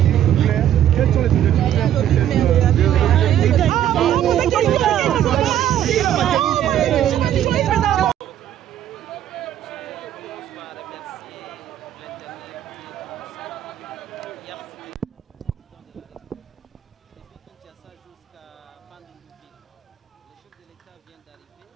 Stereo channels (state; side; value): quieter; left; 11.1 dB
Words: clairs? Quels sont les objectifs clairs pour